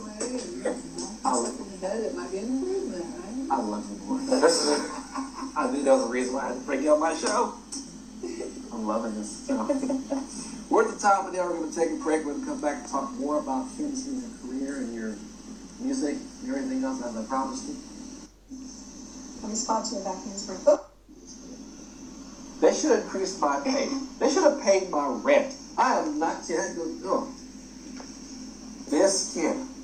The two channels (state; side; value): identical; both; correlation 1.00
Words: I love you, boy. I knew that was the reason why I had to bring you on my show. I'm loving this. We're at the top of the hour. We're going to take a break. We're going to come back and talk more about finishing your career and your music and everything else, as I promised you. Let me spot you back in spring. Oh. They should increase my pay. They should have paid my rent. I am not kidding. Oh. This kid.